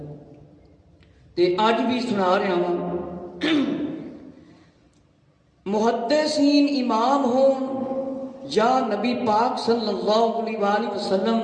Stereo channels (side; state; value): both; identical; correlation 1.00